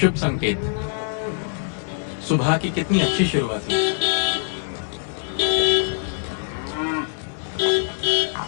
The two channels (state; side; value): silent; right; digital silence